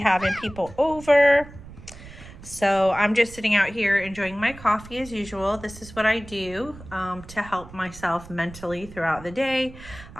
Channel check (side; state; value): right; noise; rumble, 17 dB below the sound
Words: people over. So I'm just sitting out here enjoying my coffee as usual. This is what I do to help myself mentally throughout the day.